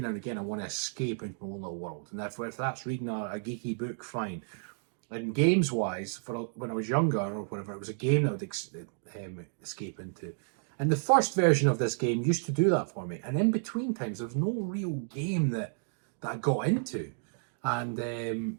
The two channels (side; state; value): left; silent; digital silence